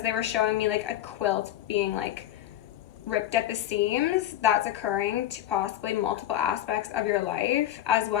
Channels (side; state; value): right; quieter; 12.7 dB